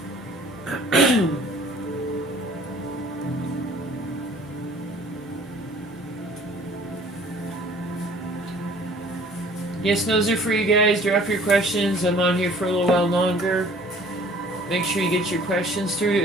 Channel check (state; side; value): normal; both; correlation 0.52